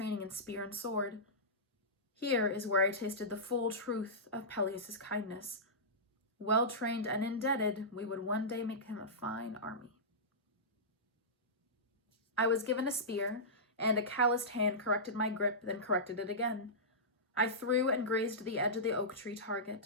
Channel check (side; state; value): both; normal; correlation -0.17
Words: in spear and sword. Here is where I tasted the full truth of Peleus's kindness. Well-trained and indebted, we would one day make him a fine army. I was given a spear, and a calloused hand corrected my grip, then corrected it again. I threw and grazed the edge of the oak tree